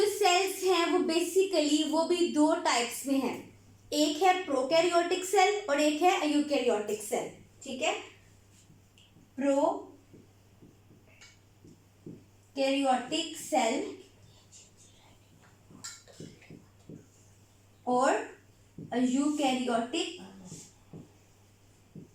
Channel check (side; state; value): both; identical; correlation 1.00